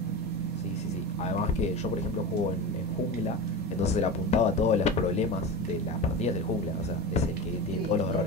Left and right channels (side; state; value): both; normal; correlation 0.27